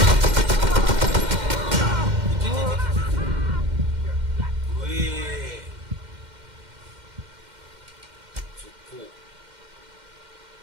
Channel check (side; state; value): left; late; 2.1 ms